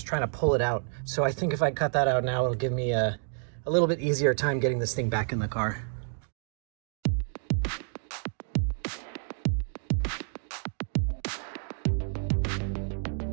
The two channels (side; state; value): left; silent; 58 dB below the other